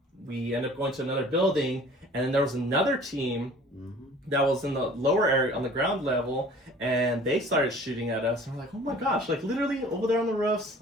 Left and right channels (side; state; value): both; normal; correlation 0.48